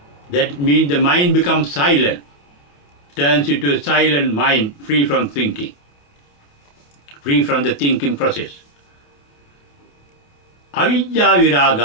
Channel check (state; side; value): late; right; 28 ms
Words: That means the mind becomes silent, turns into a silent mind, free from thinking, free from the thinking process. Avidya